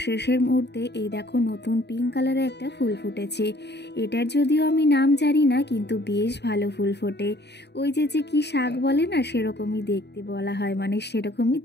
শেষের মুহূর্তে এই দেখো নতুন পিঙ্ক কালারের একটা ফুল ফুটেছে। এটার যদিও আমি নাম জানি না, কিন্তু বেশ ভালো ফুল ফোটে। ওই যে যে কি শাক বলে না, সেরকমই দেখতে বলা হয়, মানে সেরকমই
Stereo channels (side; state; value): right; late; 0.49 ms